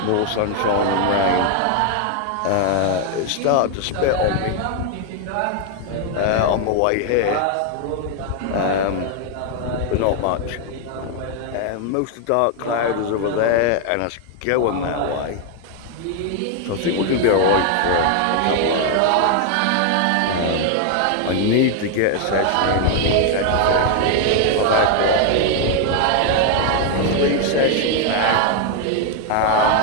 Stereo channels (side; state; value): both; different; correlation 0.00